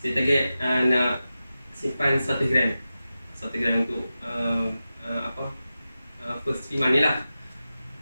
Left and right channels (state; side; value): inverted; both; correlation -0.93